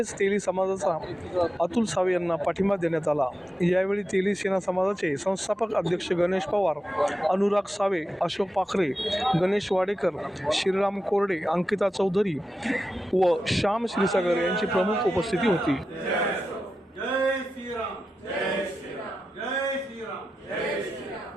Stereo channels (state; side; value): normal; both; correlation 0.91